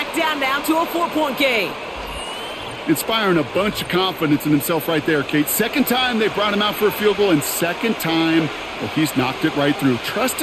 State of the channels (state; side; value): identical; both; correlation 1.00